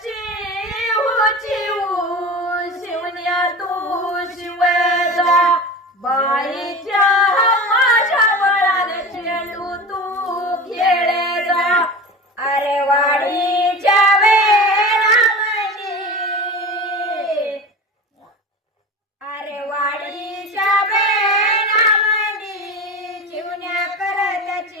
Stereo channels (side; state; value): both; normal; correlation 0.31